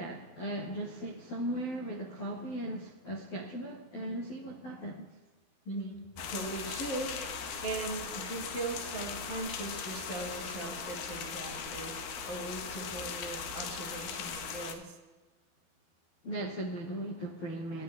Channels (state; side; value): late; right; 12 ms